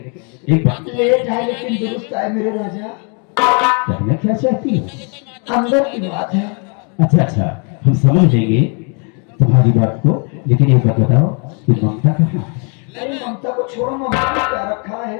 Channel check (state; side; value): quieter; right; 37.4 dB